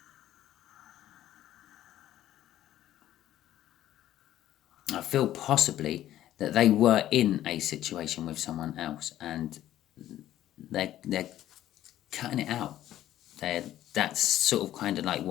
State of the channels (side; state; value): right; quieter; 12.9 dB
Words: feel possibly that they were in a situation with someone else and they're cutting it out. That's sort of kind of like